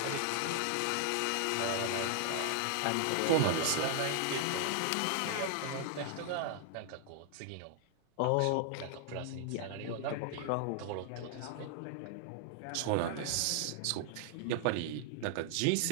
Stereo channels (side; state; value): both; different; correlation -0.01